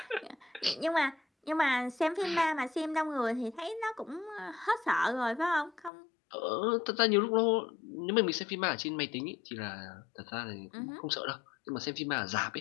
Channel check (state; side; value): drops out; right; at 5.9 s